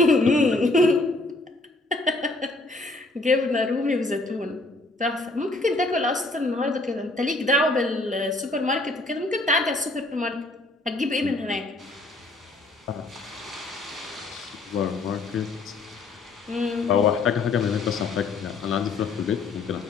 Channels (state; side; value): quieter; right; 3.1 dB